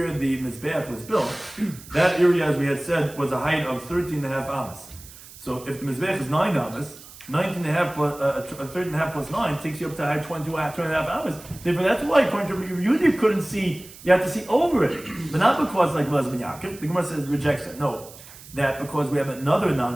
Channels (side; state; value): right; noise; hiss, 18 dB below the sound